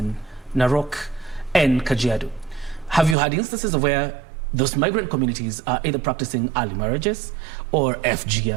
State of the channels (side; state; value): left; drops out; at 3.2 s